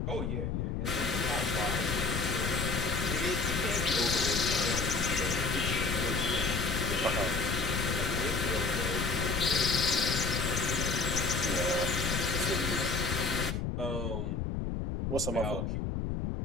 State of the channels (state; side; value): noise; left; rumble, 1 dB below the sound